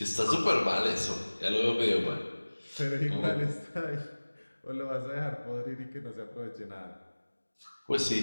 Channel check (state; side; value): inverted; both; correlation -1.00